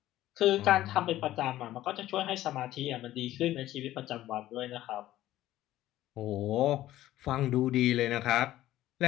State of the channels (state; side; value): quieter; right; 14.4 dB